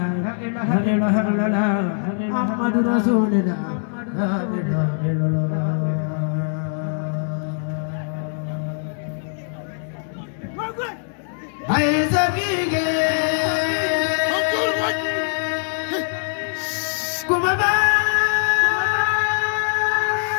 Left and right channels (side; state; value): right; silent; 62 dB below the other